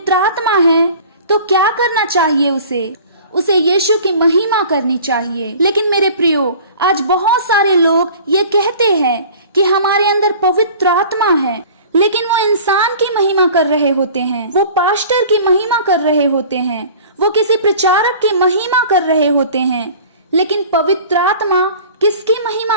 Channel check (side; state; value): both; inverted; correlation -0.44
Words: आत्मा है, तो क्या करना चाहिए? उसे यीशु की महिमा करनी चाहिए। लेकिन मेरे प्रियो, आज बहुत सारे लोग ये कहते हैं कि हमारे अंदर पवित्र आत्मा है, लेकिन वो इंसान की महिमा कर रहे होते हैं, वो पास्टर की महिमा कर रहे होते हैं, वो किसी प्रचारक की महिमा कर रहे होते हैं। लेकिन पवित्र आत्मा किसकी